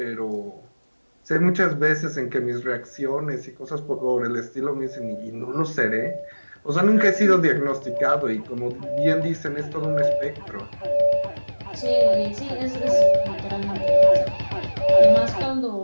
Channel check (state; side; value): inverted; both; correlation -1.00